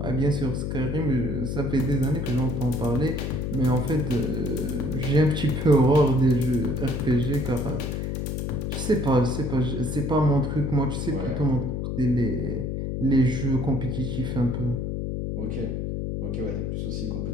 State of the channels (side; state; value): left; noise; hum, 2 dB below the sound